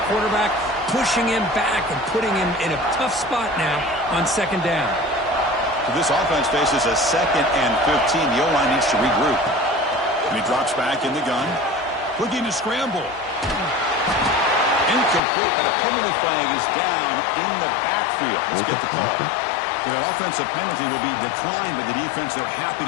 quarterback, pushing him back and putting him in a tough spot now on 2nd down. So this offense faces a 2nd and 15. The O-line needs to regroup. And he drops back in the gun. Looking to scramble. Incomplete, but a penalty flag is down in the backfield. Let's get the call. So that offensive penalty will be declined by the defense. They're happy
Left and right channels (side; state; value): right; drops out; at 15.2 s